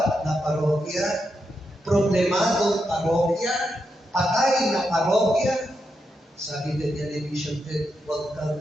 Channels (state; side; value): normal; both; correlation 0.84